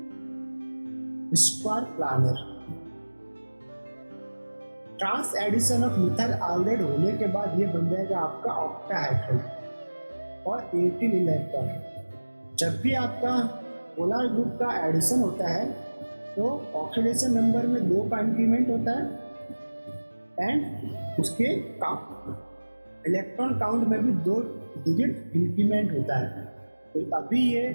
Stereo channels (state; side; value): inverted; both; correlation -1.00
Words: square planar. Trans addition of methyl iodide होने के बाद ये बन जाएगा आपका ऑक्टाहेड्रल और 18 इलेक्ट्रॉन। जब भी आपका पोलर ग्रुप का एडिशन होता है तो ऑक्सीडेशन नंबर में 2 का इंक्रीमेंट होता है एंड उसके इलेक्ट्रॉन काउंट में भी 2 डिजिट इंक्रीमेंट होता है। तो अभी ये